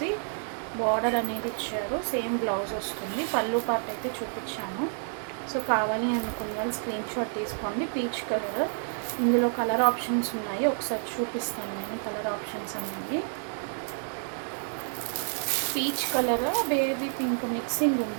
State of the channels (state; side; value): silent; left; 58 dB below the other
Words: బార్డర్ అనేది ఇచ్చారు. సేమ్ బ్లౌజ్ వస్తుంది. పళ్ళు పార్ట్ అయితే చూపించాను. సో కావాలి అనుకున్న వాళ్ళు స్క్రీన్ షాట్ తీసుకోండి. పీచ్ కలర్, ఇందులో కలర్ ఆప్షన్స్ ఉన్నాయి, ఒకసారి చూపిస్తాను నేను. కలర్ ఆప్షన్స్ అనేవి peach colour, baby pink mixing